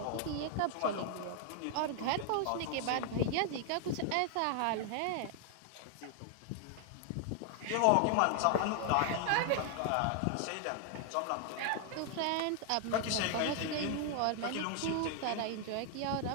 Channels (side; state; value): both; different; correlation 0.00